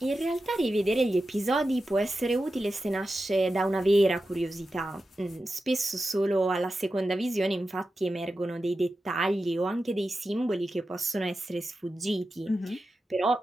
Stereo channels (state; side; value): normal; both; correlation 0.92